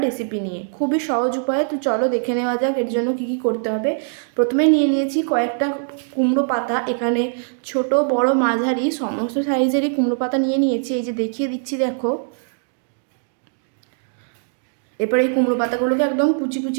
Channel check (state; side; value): silent; left; 65 dB below the other